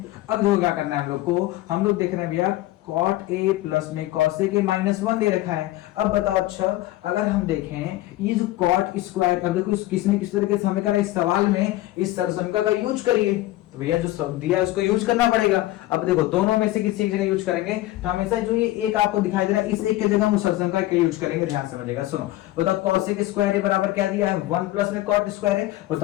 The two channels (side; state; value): right; quieter; 16.5 dB